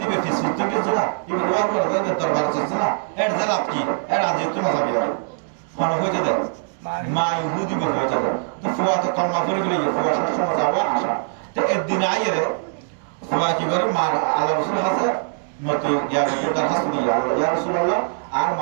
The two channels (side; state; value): left; silent; digital silence